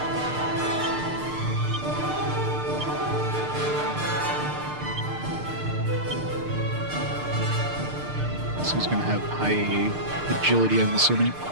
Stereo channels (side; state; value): left; late; 6.6 ms